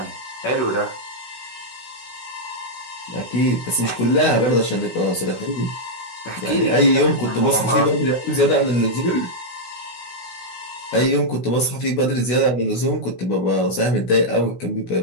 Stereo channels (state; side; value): late; right; 16 ms